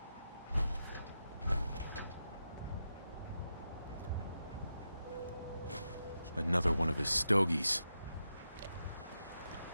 Another one of his stogies.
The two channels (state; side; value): inverted; both; correlation -0.87